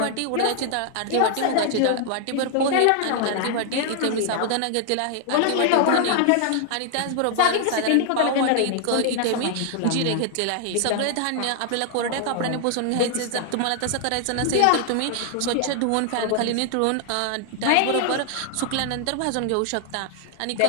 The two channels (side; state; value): both; different; correlation 0.00